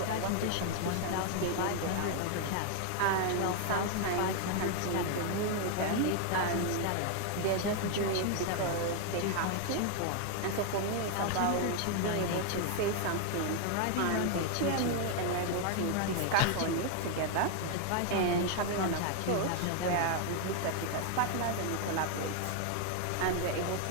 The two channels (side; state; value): both; different; correlation 0.00